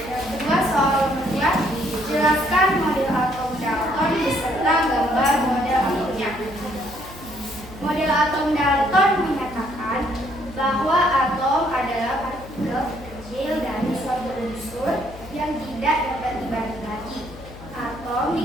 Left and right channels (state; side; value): noise; left; hum, 17 dB below the sound